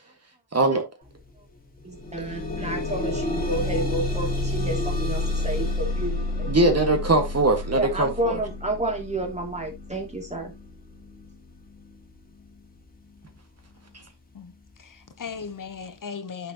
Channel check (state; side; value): normal; both; correlation 0.08